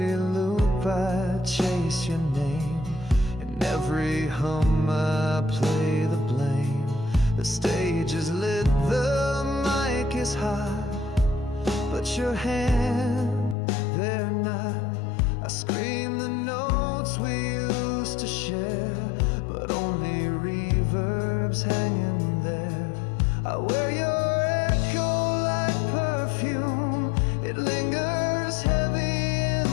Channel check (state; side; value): drops out; right; at 13.6 s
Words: loop I chase your name. In every hum I play the blame. The stage is lit, the mic is hot, but your hand, they're not. I scream the notes we used to share, but only reverb's hanging there. I wear your echo like perfume. It lingers heavy